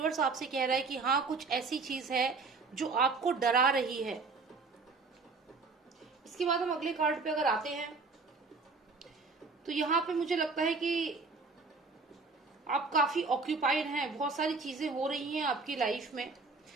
आपसे कह रहा है कि हाँ, कुछ ऐसी चीज है जो आपको डरा रही है। इसके बाद हम अगले कार्ड पे अगर आते हैं तो यहाँ पे मुझे लगता है कि आप काफी ऑक्यूपाइड हैं, बहुत सारी चीजें हो रही हैं आपकी लाइफ में।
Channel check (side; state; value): left; quieter; 4.2 dB